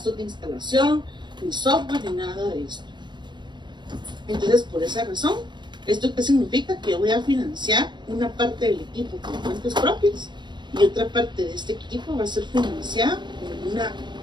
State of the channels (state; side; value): late; left; 0.22 ms